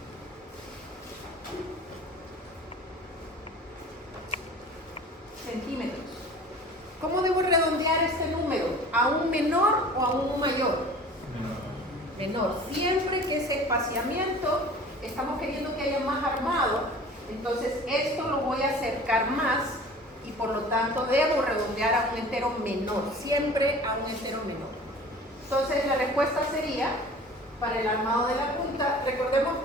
centímetros. ¿Cómo debo redondear este número? ¿A un menor o a un mayor? Menor. Siempre que ese espaciamiento estamos queriendo que haya más armado, entonces esto lo voy a acercar más y por lo tanto debo redondear a un entero menor, siempre a un entero menor. Entonces la respuesta sería, para el armado de la punta, recordemos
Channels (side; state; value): both; normal; correlation 0.43